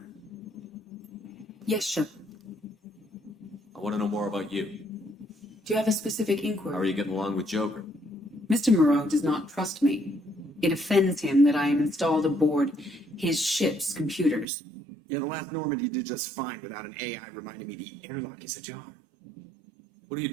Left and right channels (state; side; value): drops out; left; at 14.5 s